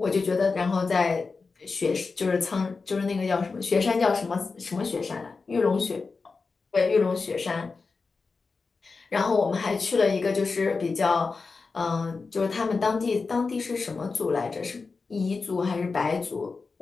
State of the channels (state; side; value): quieter; right; 4.4 dB